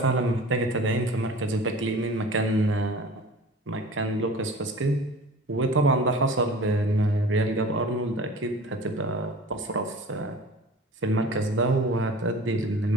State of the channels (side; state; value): both; normal; correlation 0.41